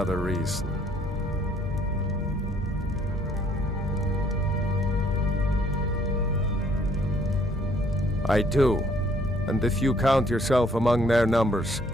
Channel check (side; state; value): both; normal; correlation 0.63